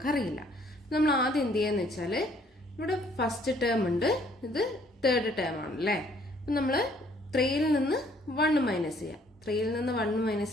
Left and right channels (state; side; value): normal; both; correlation 0.62